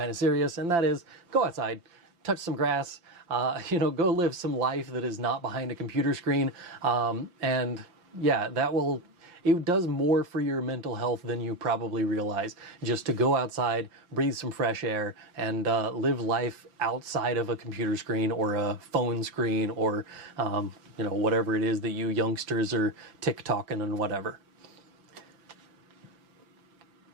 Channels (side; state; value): left; late; 5.8 ms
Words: of serious, and that is go outside, touch some grass, go live some life that is not behind a computer screen. And yeah, it does more for your mental health than you probably realize, just to go outside, breathe some fresh air, and live life outside of a computer screen or a phone screen or whatever it is that you youngsters are TikToking and whatever.